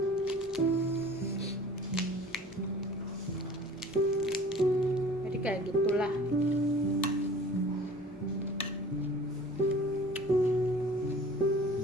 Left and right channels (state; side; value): normal; both; correlation 0.46